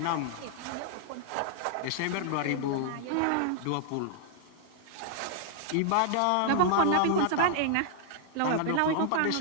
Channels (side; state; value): both; different; correlation -0.01